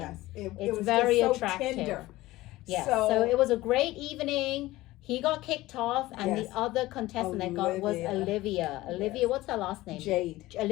It It's was very just so attractive. tender. Yeah. So it was a great evening. He got kicked off, and Yes. the other contestant that got was Olivia. Olivia, Yes. what's her last name? Jade.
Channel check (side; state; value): right; quieter; 17.9 dB